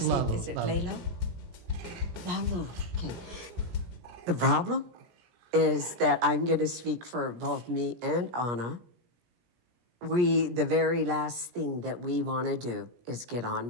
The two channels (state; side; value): late; left; 17 ms